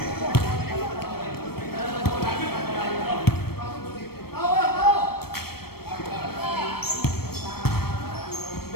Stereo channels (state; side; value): late; right; 0.95 ms